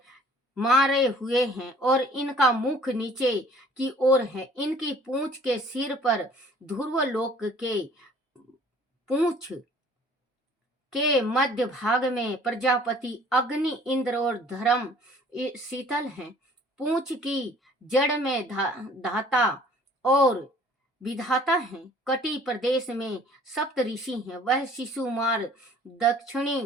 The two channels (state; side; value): normal; both; correlation 0.54